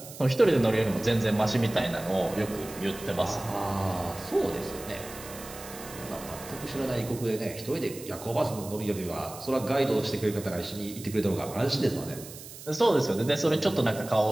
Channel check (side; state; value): right; noise; hiss, 14 dB below the sound